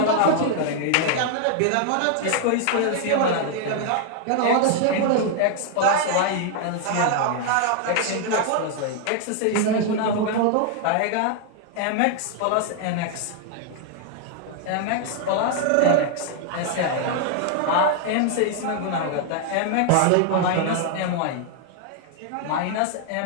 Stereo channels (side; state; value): both; different; correlation 0.00